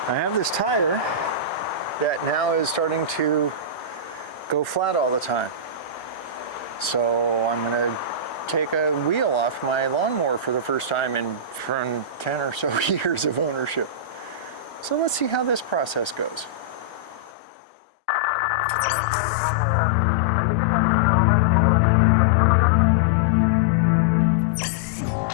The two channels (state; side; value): drops out; right; at 17.3 s